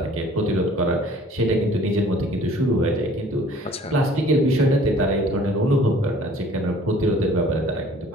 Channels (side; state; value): both; normal; correlation 0.53